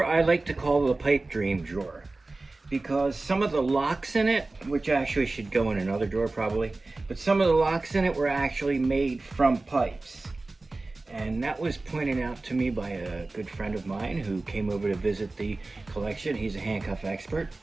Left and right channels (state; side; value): quieter; left; 3.2 dB